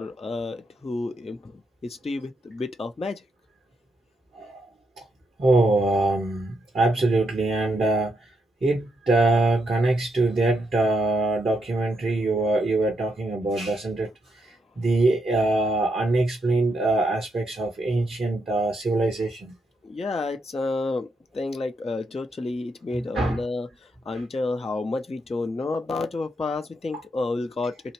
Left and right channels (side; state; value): both; normal; correlation 0.80